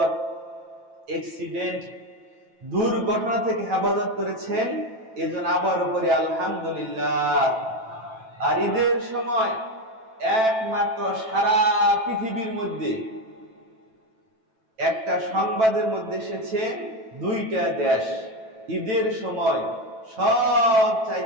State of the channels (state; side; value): late; left; 9.1 ms